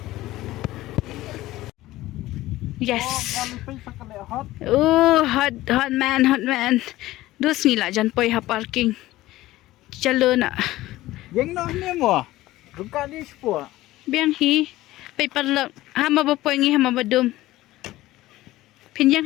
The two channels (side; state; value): right; quieter; 16.7 dB